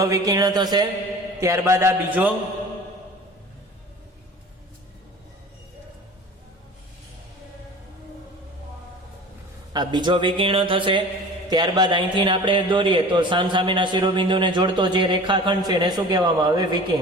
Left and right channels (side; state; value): both; normal; correlation 0.41